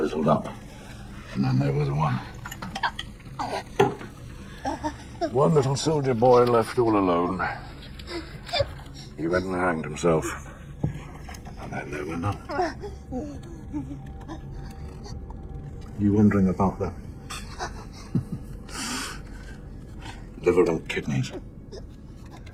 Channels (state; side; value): identical; both; correlation 1.00